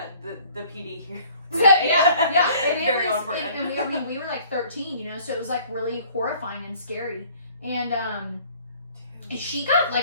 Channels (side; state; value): both; inverted; correlation -0.55